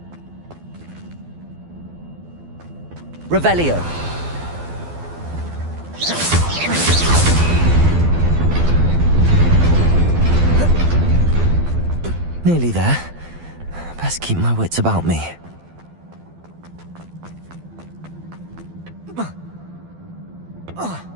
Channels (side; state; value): left; late; 12 ms